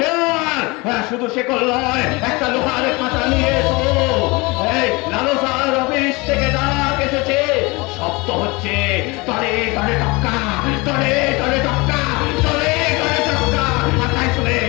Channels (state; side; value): quieter; right; 25.3 dB